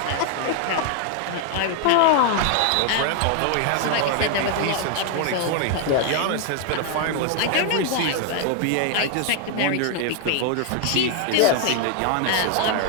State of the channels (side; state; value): both; different; correlation 0.00